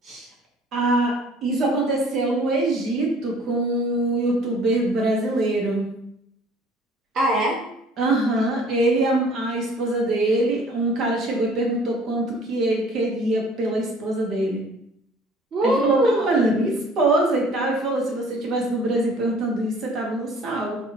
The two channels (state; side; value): normal; both; correlation 0.52